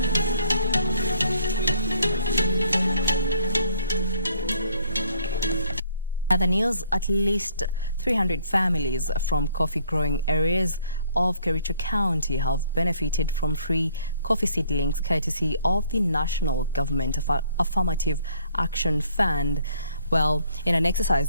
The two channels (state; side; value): inverted; both; correlation -0.64